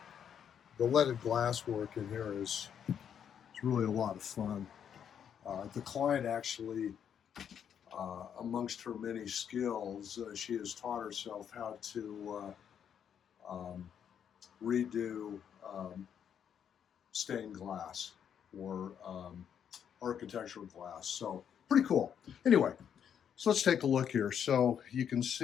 leaded glass work in here is really a lot of fun. The client actually, amongst her many skills, she has taught herself how to redo stained glass or architectural glass. So pretty cool. Anyway, so let's take a look here. So you can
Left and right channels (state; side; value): quieter; right; 8.4 dB